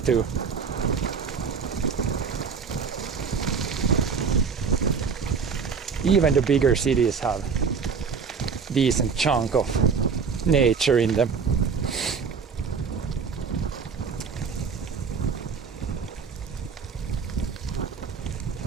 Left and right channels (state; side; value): quieter; left; 5.7 dB